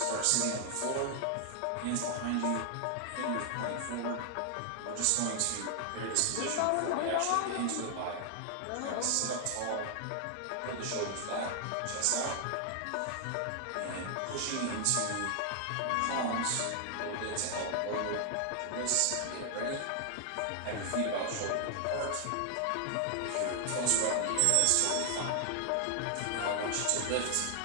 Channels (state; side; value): different; both; correlation 0.00